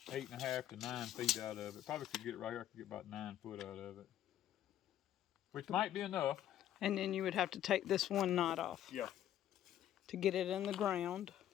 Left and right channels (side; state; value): right; quieter; 11.6 dB